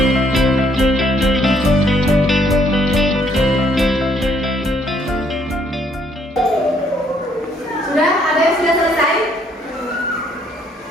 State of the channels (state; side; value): normal; both; correlation 0.68